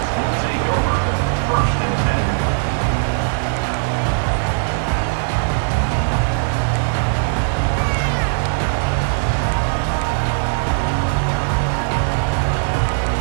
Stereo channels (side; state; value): left; silent; digital silence